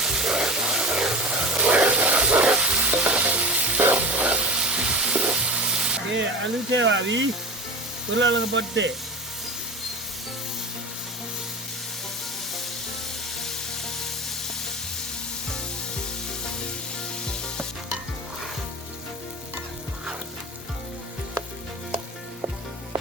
အလူထည့်ပါပြီဘလာလကပတ်တဲ့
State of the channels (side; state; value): both; normal; correlation 0.29